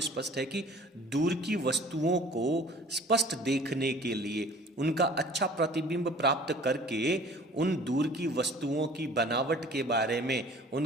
स्पष्ट है कि दूर की वस्तुओं को स्पष्ट देखने के लिए, उनका अच्छा प्रतिबिंब प्राप्त करके उन दूर की वस्तुओं की बनावट के बारे में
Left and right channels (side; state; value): both; normal; correlation 0.49